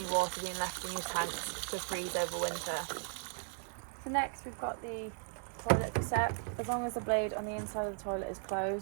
water being left in your tanks to freeze over winter. So next we've got the toilet cassette. As long as the blade on the inside of the toilet is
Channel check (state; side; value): silent; left; 53 dB below the other